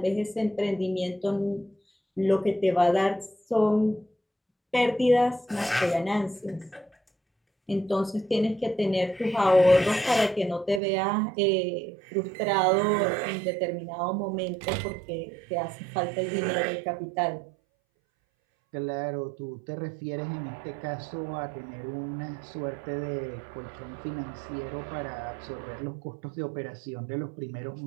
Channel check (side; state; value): left; drops out; at 10.8 s